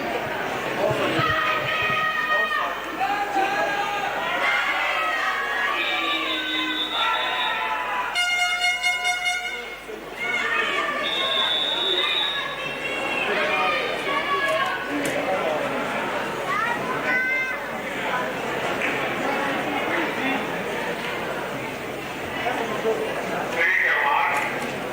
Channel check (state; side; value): identical; both; correlation 1.00